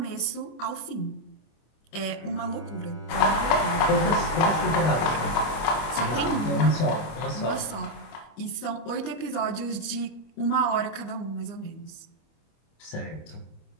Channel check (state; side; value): late; right; 25 ms